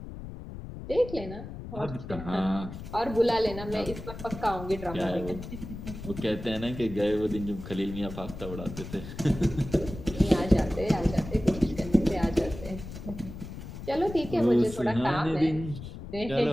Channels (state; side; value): noise; left; rumble, 11 dB below the sound